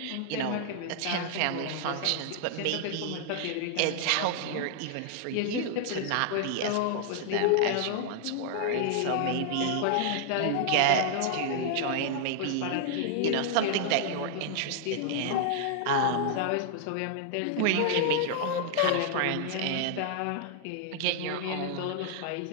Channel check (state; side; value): different; both; correlation -0.01